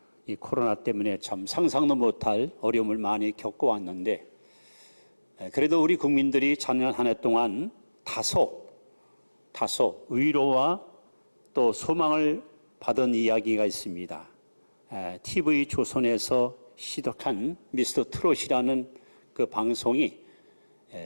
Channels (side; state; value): both; inverted; correlation -1.00